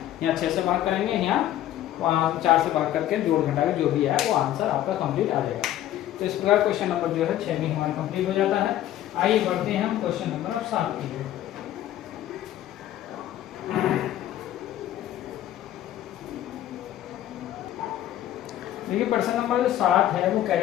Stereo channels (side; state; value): right; quieter; 12.9 dB